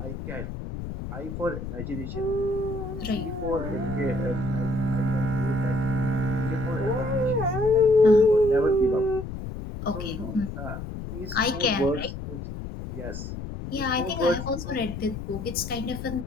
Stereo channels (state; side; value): noise; left; rumble, 7 dB below the sound